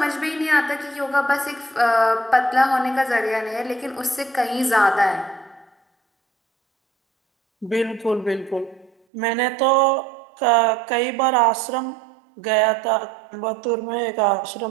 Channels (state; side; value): drops out; left; at 8.9 s